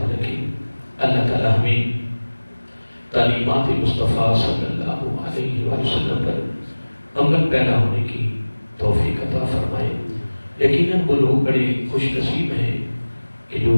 رکھے۔ اللہ تعالی ہمیں تعلیمات مصطفیٰ صلی اللہ علیہ وسلم پر عمل پیدا ہونے کی توفیق عطا فرمائے۔ یقیناً وہ لوگ بڑے خوش نصیب ہیں کہ جو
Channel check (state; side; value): inverted; both; correlation -1.00